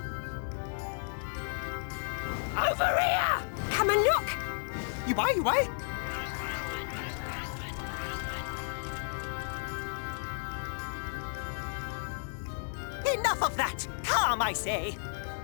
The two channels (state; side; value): silent; right; digital silence